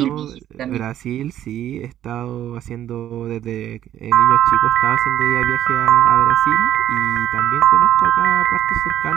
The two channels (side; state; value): left; quieter; 11.6 dB